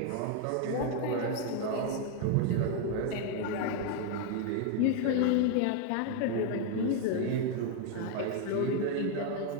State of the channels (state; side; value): different; both; correlation 0.01